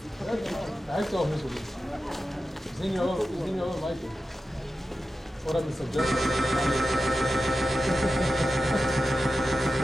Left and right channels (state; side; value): normal; both; correlation 0.92